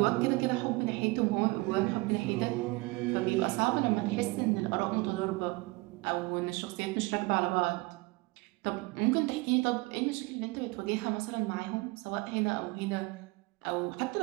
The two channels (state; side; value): quieter; left; 24.1 dB